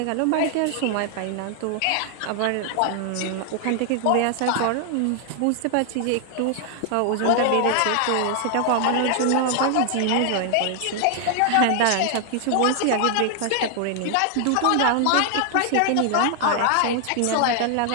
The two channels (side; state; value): both; different; correlation 0.00